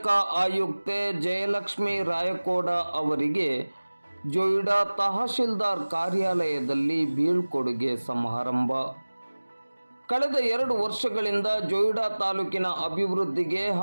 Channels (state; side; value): inverted; both; correlation -1.00